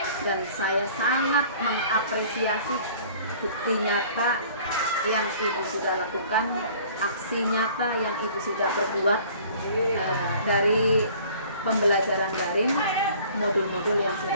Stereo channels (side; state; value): both; inverted; correlation -0.50